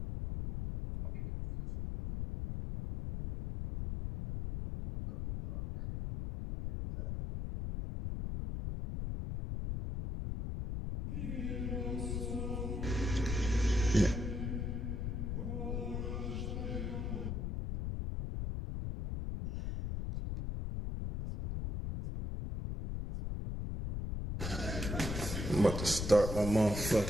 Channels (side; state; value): left; noise; rumble, 3 dB below the sound